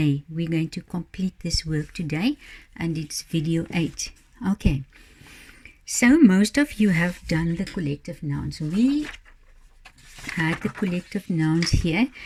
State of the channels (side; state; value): both; identical; correlation 1.00